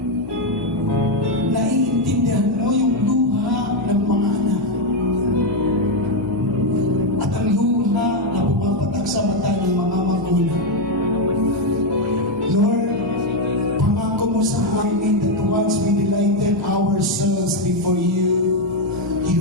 naiintindihan mo yung luha ng mga anak at ang luha na pumapatak sa mata ng mga magulang. Lord, pangako mo sa amin that once we delighted ourselves before you,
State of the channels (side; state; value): both; normal; correlation 0.04